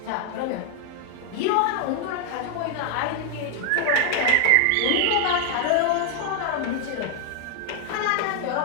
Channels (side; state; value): both; different; correlation 0.00